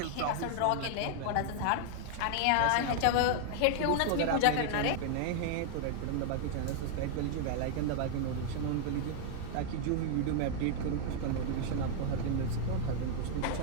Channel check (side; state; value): both; different; correlation 0.00